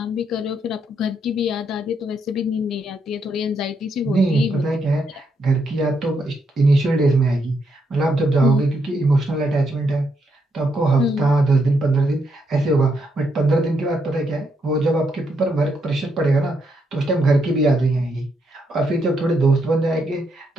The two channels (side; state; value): both; normal; correlation 0.77